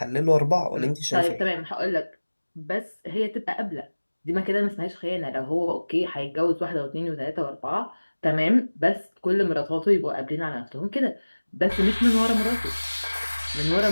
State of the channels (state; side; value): inverted; both; correlation -1.00